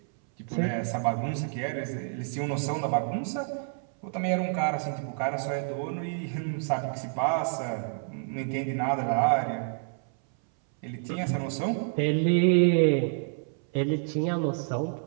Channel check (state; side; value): silent; left; 59 dB below the other